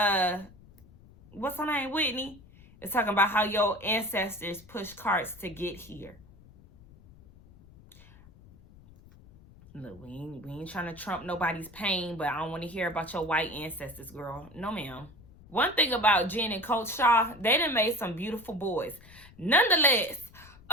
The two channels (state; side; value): noise; left; rumble, 23 dB below the sound